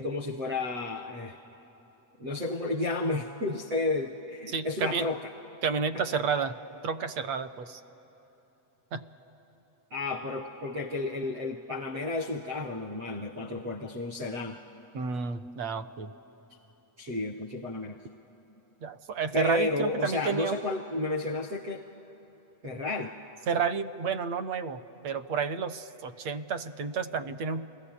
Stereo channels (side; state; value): left; late; 8.2 ms